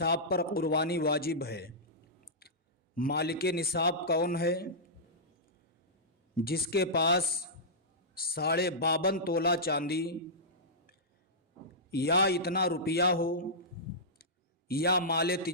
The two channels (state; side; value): normal; both; correlation -0.14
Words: پر قربانی واجب ہے۔ مالک نصاب کون ہے؟ جس کے پاس 52.5 تولہ چاندی یا اتنا روپیہ ہو یا مال